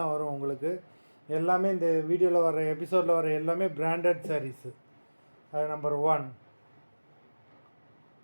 வரும் உங்களுக்கு. எல்லாமே இந்த வீடியோவில் வர எபிசோடில் வர எல்லாமே பிராண்டட் சாரீஸு. அது நம்பர் 1.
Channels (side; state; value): both; inverted; correlation -1.00